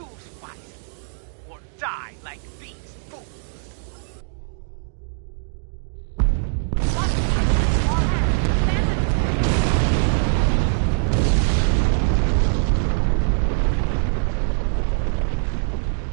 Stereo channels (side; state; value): left; silent; digital silence